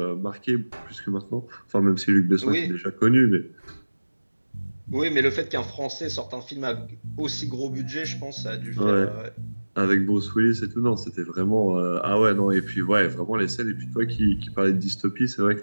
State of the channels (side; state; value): both; inverted; correlation -1.00